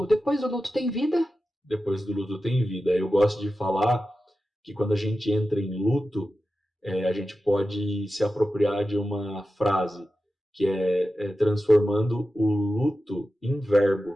depois do luto tem vida? Depois do luto tem vida. Eu gosto de falar que quando a gente entra em luto, a gente pode se apropriar de uma frase que é transformando o luto em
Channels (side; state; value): both; normal; correlation 0.92